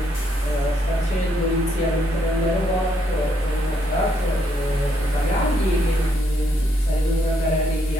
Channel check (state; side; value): normal; both; correlation 0.74